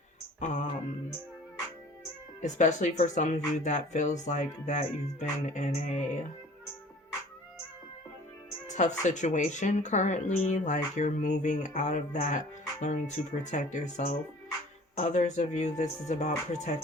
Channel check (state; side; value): normal; both; correlation 0.48